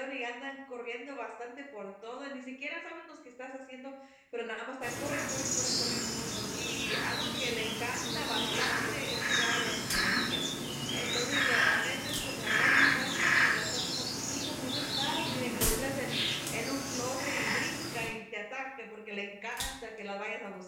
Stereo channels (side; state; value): both; identical; correlation 1.00